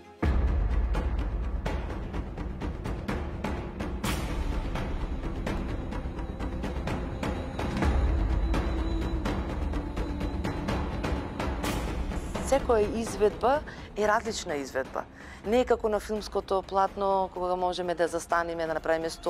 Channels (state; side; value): identical; both; correlation 1.00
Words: Секоја изведба е различна изведба. Не е како на филмското платно, кога можеме да застанеме, да направиме